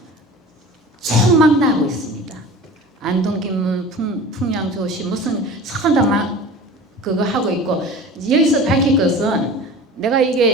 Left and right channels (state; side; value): normal; both; correlation 0.38